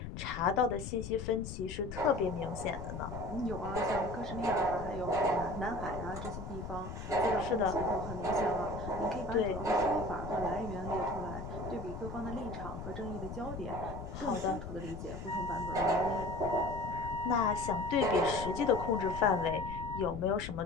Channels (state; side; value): noise; left; rumble, 8 dB below the sound